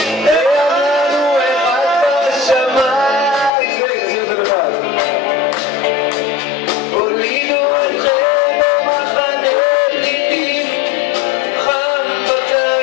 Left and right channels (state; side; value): drops out; right; at 3.5 s